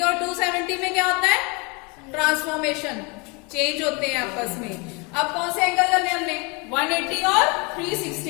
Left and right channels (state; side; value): quieter; right; 29.6 dB